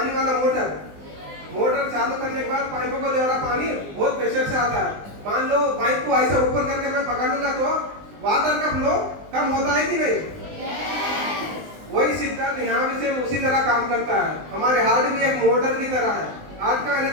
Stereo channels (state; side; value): late; left; 20 ms